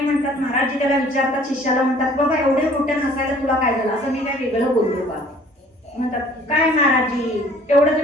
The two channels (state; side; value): normal; both; correlation 0.54